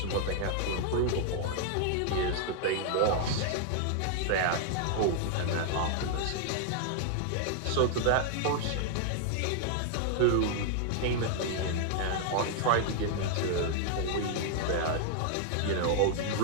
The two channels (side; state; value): both; different; correlation 0.00